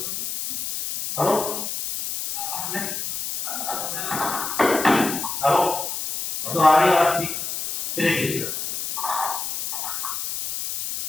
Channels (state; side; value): noise; left; hiss, 4 dB below the sound